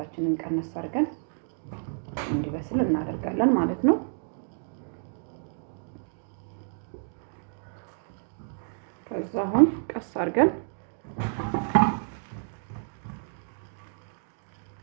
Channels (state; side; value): silent; left; 58 dB below the other